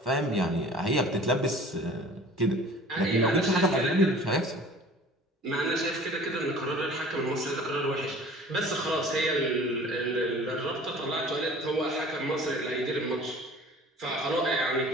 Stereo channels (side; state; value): both; normal; correlation 0.46